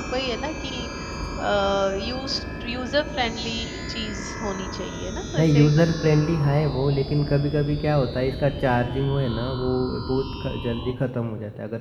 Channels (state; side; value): identical; both; correlation 1.00